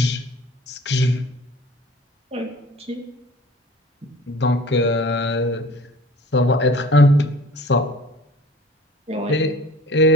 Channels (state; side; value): normal; both; correlation 0.46